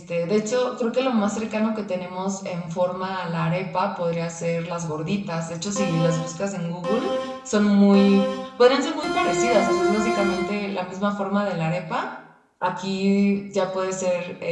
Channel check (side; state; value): both; identical; correlation 1.00